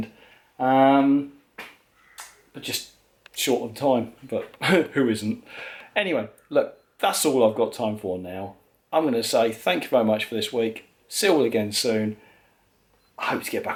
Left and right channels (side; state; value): both; identical; correlation 1.00